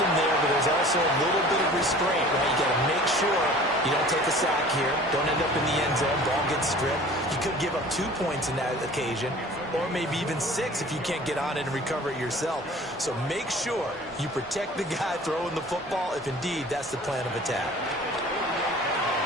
there, but there's also a little bit of restraint, right? You got to make sure you don't take a sack here. Don't end up in the end zone. Ball gets stripped. You could give up 2 points in that occasion, or maybe even 6 if you can't get on it and recover it yourself. So make sure you protect the guy throwing the football if indeed that's the plan of attack.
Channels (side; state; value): both; normal; correlation 0.45